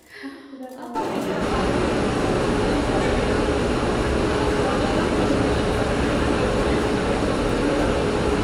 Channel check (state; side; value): identical; both; correlation 1.00